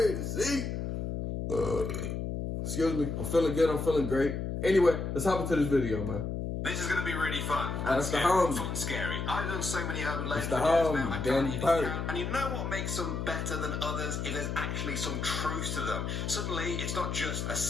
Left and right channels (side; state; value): left; noise; hum, 3 dB below the sound